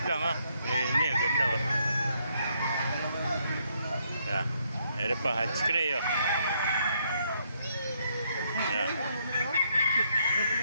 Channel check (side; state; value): both; inverted; correlation -0.73